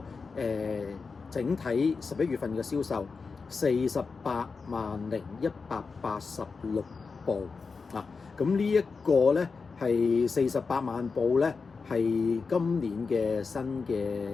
整體11月份嘅銷售48,186部啊，咁呢一個咧係48萬部咧，係今年嘅新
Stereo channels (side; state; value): right; quieter; 4.7 dB